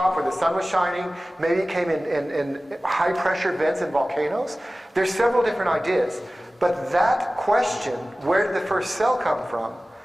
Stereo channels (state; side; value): normal; both; correlation 0.97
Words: where the sun was shining. Maybe it came in high-pressure vents and volcanoes. There's several different ideas. But that question, where did the first cell come from,